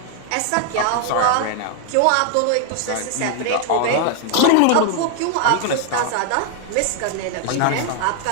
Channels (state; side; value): different; both; correlation 0.00